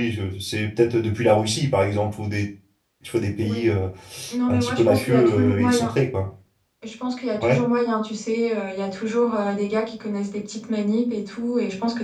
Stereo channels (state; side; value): identical; both; correlation 1.00